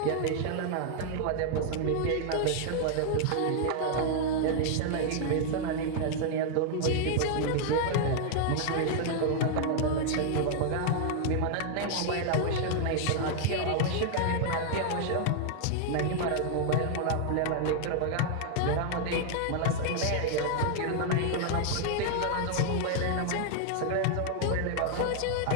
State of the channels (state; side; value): different; both; correlation 0.00